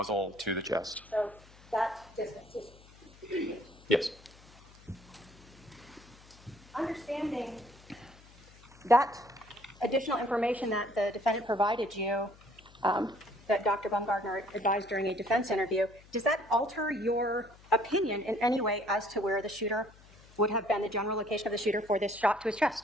to the chest. so that distance is 2 feet. Yes. Understanding that additional information that the defendant provided you, that Dr. Baumgartner advised during a defense interview, does that alter your opinion in any way as to where the shooter would have been, the general location of the shooter for this shot to his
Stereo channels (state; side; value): noise; left; hum, 24 dB below the sound